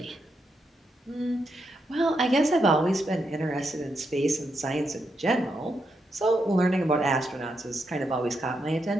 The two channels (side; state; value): both; normal; correlation 0.82